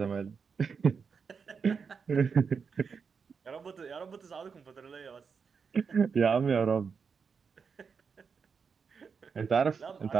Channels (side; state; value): left; quieter; 5.8 dB